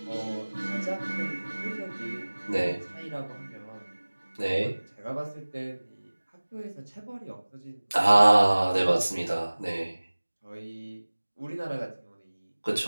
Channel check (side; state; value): both; inverted; correlation -1.00